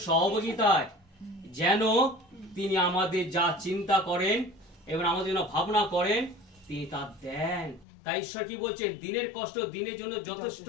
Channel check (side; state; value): right; drops out; at 7.9 s